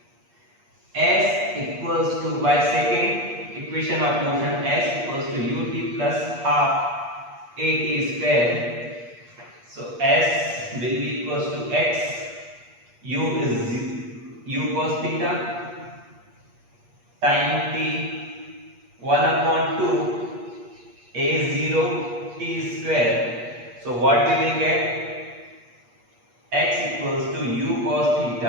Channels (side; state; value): left; late; 8.4 ms